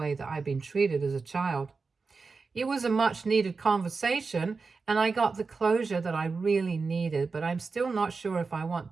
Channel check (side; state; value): left; quieter; 4.5 dB